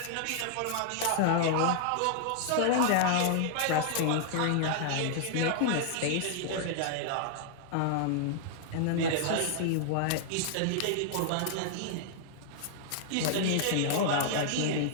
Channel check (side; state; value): both; different; correlation -0.01